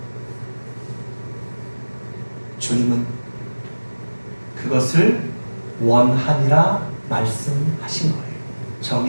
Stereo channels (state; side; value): inverted; both; correlation -1.00